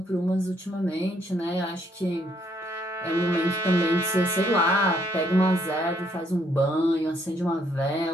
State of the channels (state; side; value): normal; both; correlation 0.70